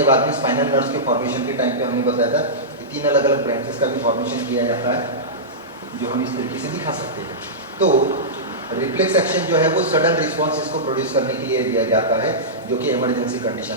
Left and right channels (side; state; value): both; normal; correlation -0.15